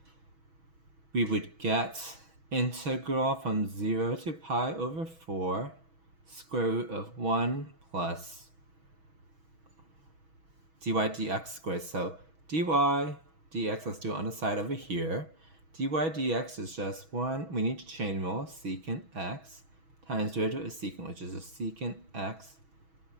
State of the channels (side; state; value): left; late; 6.2 ms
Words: We would get integral from 0 to pi over 4 square root of 1 plus dy dx squared. So dy dx, let's do it on the side over here. Dy dx is just 1, we need to chain rule, secant x times derivative of secant, which is a secant x